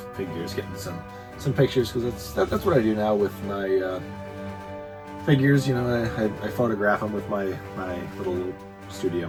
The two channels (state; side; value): identical; both; correlation 1.00